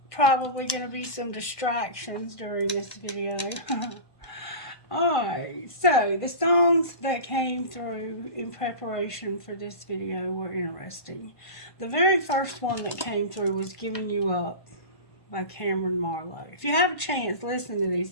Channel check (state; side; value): late; right; 1.5 ms